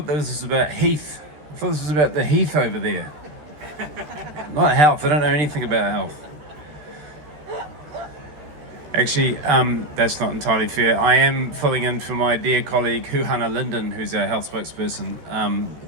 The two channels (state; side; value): late; left; 14 ms